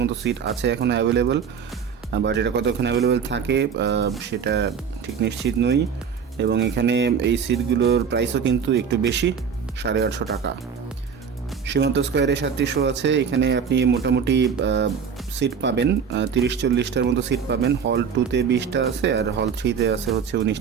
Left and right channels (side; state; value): left; quieter; 6.7 dB